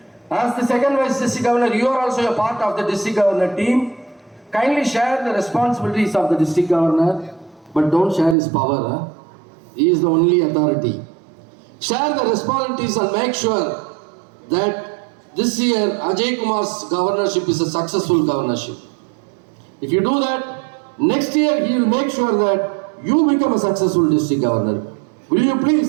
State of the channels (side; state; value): left; drops out; at 8.3 s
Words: As the second vice district governor, you are also a part of the district governor team. Kindly share the responsibilities of the district governor, but don't share his power. He is the only authority. Share the responsibilities and make sure that this year Ajay Kumar's governorship is a successful governorship. If you do that, next year he will make sure that you become a successful district governor. Will you